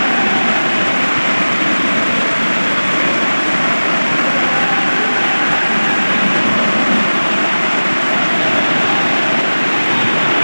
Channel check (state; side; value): inverted; both; correlation -1.00